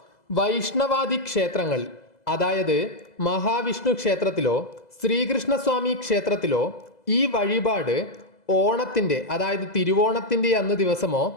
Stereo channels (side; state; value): right; late; 2.0 ms